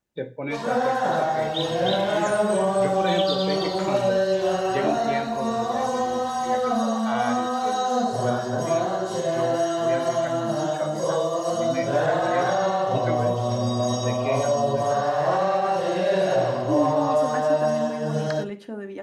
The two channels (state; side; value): identical; both; correlation 1.00